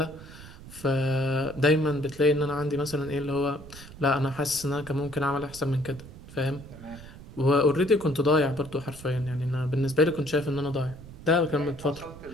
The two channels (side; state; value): right; noise; rumble, 16 dB below the sound